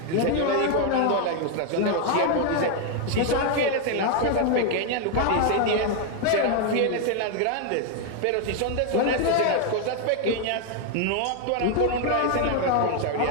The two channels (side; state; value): both; different; correlation 0.01